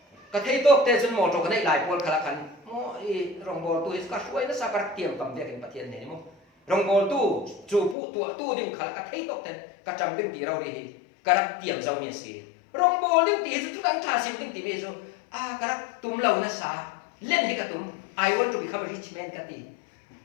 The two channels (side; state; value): right; drops out; at 8.0 s